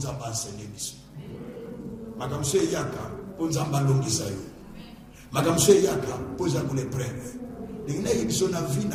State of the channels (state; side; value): identical; both; correlation 1.00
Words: enseigner Biso. Makamso Yaka, pour Nzamba longisa yo. Makamso Yaka, pour Nzamba l'épreuve. Il y a une vie